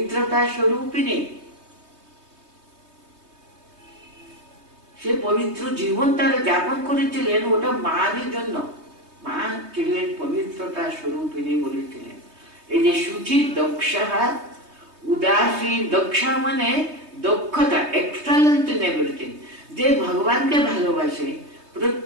স্বরূপিণী, সে পবিত্র জীবন তারা যাপন করেছিলেন, ওটা মায়ের জন্য। মা ছিলেন পবিত্রতার স্বরূপিণী বলেছিলেন। এই যে শুচি দক্ষা, উদাসী, দক্ষা মানে দক্ষতা, এক্সেলেন্ট ইন এভরিথিং। যে ভগবানকে ভালোবাসে,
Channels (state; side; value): late; left; 3.2 ms